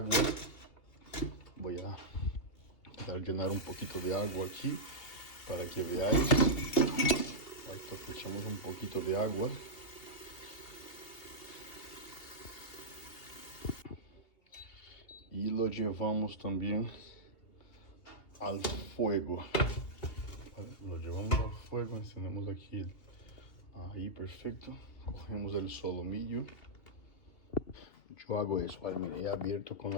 Voy a llenar un poquito de agua aquí para que veáis. Esto echamos un poquito de agua. Y lo llevamos también al fuego. Lo llevamos al fuego, encendemos aquí. Ahí, perfecto. Cogemos el solomillo. Yo hago eso, ¿vale? Mira, he abierto con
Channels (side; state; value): right; late; 2.7 ms